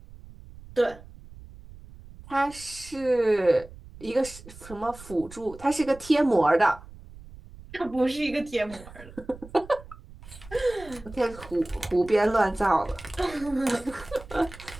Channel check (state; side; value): noise; right; rumble, 18 dB below the sound